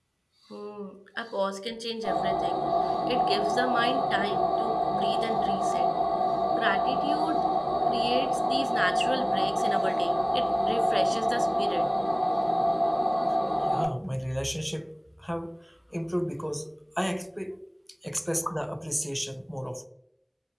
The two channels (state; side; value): identical; both; correlation 1.00